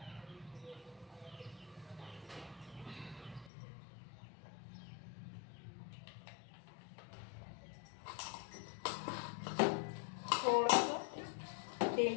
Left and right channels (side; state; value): right; drops out; at 3.5 s